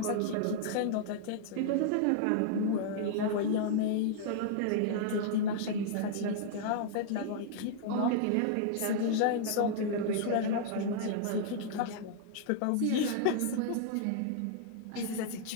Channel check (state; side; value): different; both; correlation -0.01